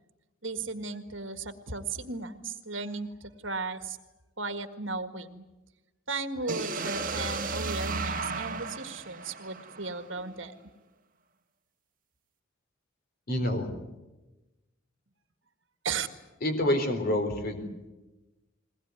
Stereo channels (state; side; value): normal; both; correlation 0.17